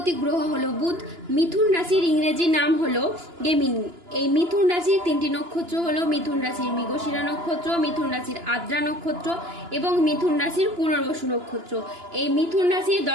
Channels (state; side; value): late; left; 2.9 ms